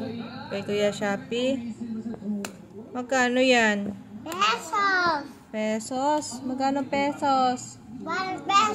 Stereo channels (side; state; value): both; identical; correlation 1.00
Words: Kay Kuya Shopee? Magkano yan? Pesos. Pesos? Magkano pesos? 1